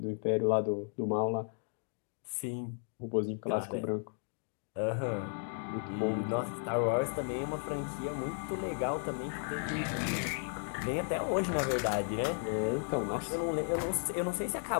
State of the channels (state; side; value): silent; right; 55 dB below the other